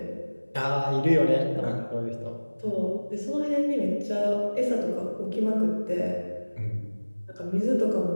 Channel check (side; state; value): both; inverted; correlation -1.00